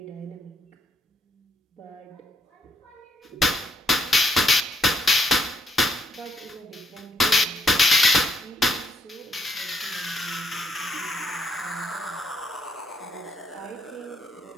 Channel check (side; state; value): both; normal; correlation 0.74